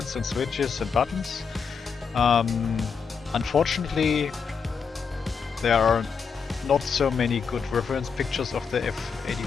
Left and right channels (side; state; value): right; quieter; 6.0 dB